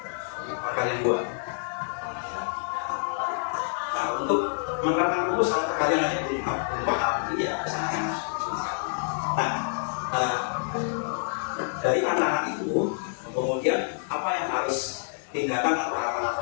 Perkalian 2. Nah, untuk menerapkan rumus kalau perkalian aja belum paham, ini ya sangat susah. Nah, dari anak-anak itu kemudian apa yang harus tindakan atau apa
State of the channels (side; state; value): right; silent; digital silence